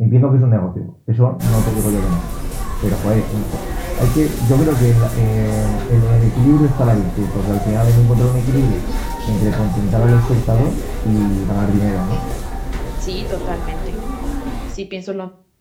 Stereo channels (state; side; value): identical; both; correlation 1.00